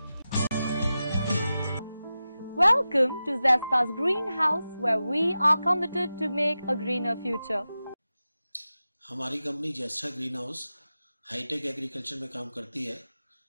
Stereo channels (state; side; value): inverted; both; correlation -0.93